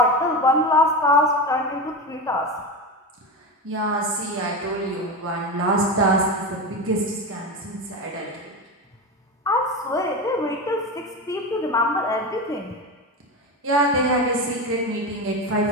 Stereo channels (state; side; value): normal; both; correlation 0.21